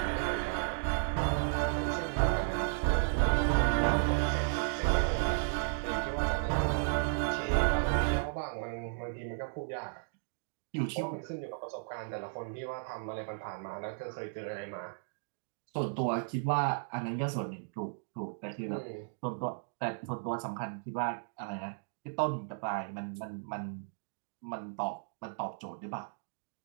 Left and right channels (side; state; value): left; silent; digital silence